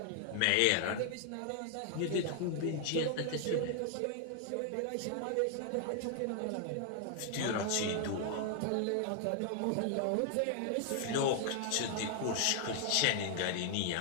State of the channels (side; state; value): both; different; correlation 0.00